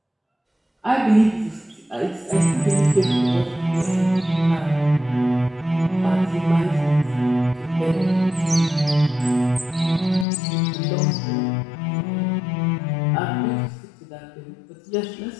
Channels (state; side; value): drops out; right; at 10.2 s